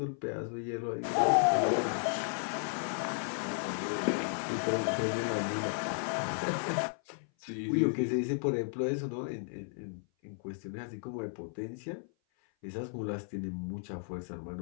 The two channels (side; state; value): right; silent; 55 dB below the other